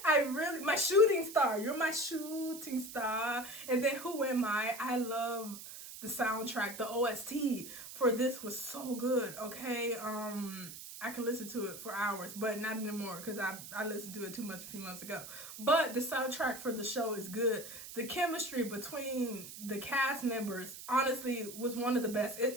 my shooting star. You're my shooting star. And then Who Am I love the soundtrack. The OST for this was so good. Okay, I can listen to it for hours, but not anymore because I listened to it too much a few months ago. But the soundtrack for the show is good. The chemistry between the cast members, honestly, was one of the best.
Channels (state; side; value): noise; right; hiss, 12 dB below the sound